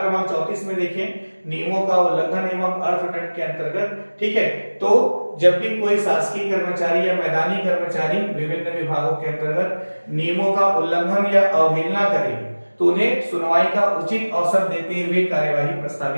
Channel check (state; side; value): inverted; both; correlation -1.00